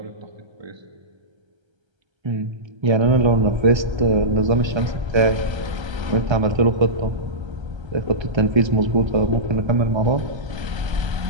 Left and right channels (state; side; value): late; left; 1.3 ms